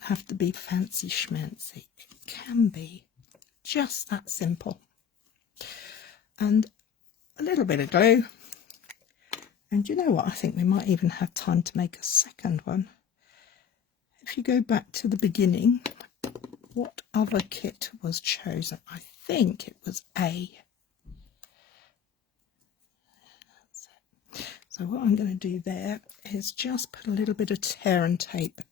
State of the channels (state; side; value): quieter; right; 7.8 dB